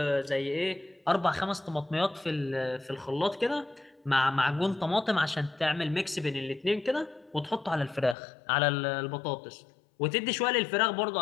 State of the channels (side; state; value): right; drops out; at 8.2 s